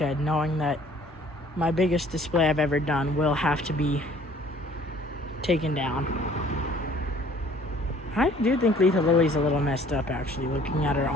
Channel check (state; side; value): normal; both; correlation 0.55